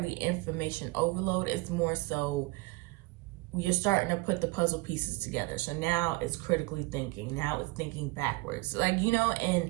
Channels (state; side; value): quieter; left; 22.6 dB